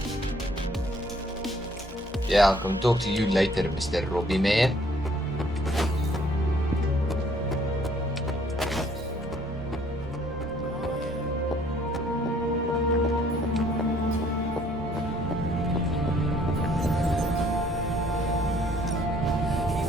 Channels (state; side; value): normal; both; correlation 0.61